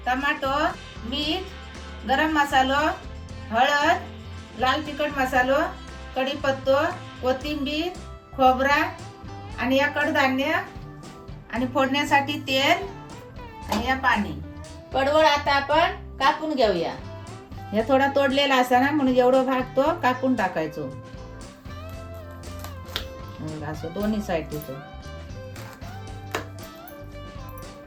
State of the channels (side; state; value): both; identical; correlation 1.00